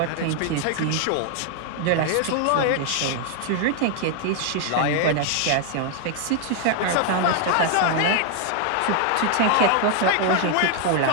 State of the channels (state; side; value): different; both; correlation 0.00